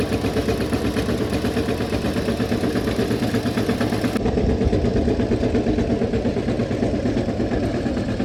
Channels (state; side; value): identical; both; correlation 1.00